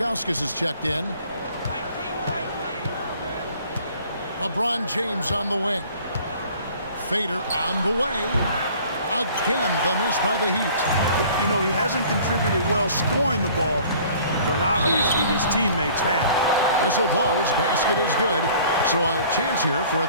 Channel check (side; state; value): both; inverted; correlation -0.51